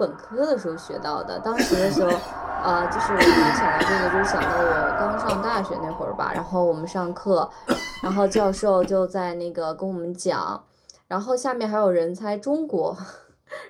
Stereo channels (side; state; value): both; identical; correlation 1.00